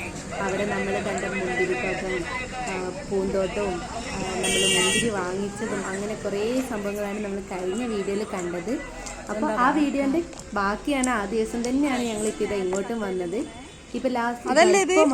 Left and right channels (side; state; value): both; identical; correlation 1.00